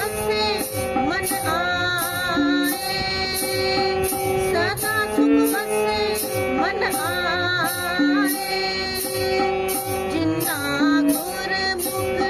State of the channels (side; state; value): both; identical; correlation 1.00